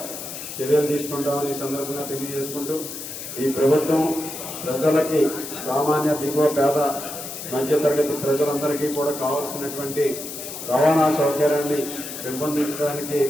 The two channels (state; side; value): noise; left; hiss, 9 dB below the sound